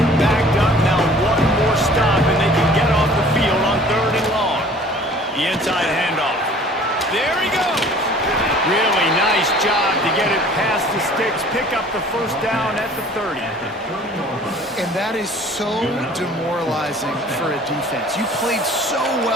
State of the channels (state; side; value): normal; both; correlation 0.50